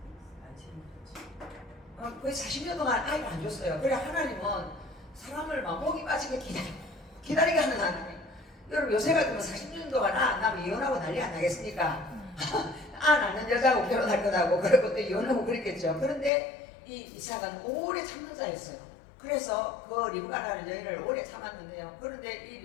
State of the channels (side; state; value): right; drops out; at 16.3 s